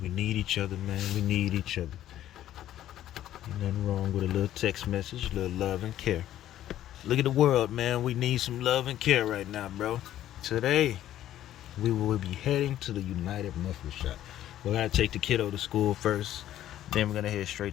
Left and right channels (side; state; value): right; quieter; 12.5 dB